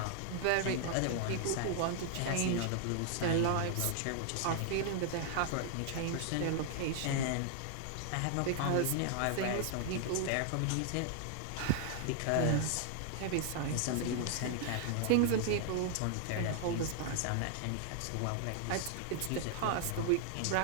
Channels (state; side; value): different; both; correlation 0.00